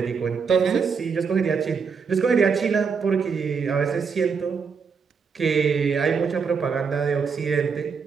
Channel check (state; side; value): quieter; left; 5.8 dB